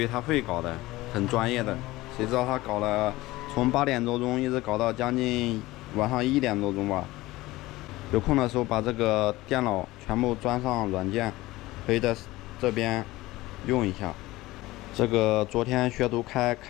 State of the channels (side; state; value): right; quieter; 18.7 dB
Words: 他会搞的，很专业的，谁知道他搞了，从8点多钟一直搞到将近晚上1点多钟吧。有空的时候把这个电脑全部装上软件，可以在这边用一下。这个昨天学徒开